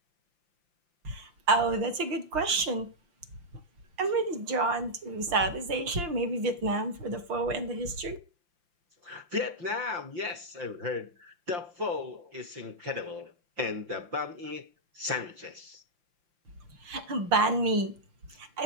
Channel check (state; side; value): late; left; 5.8 ms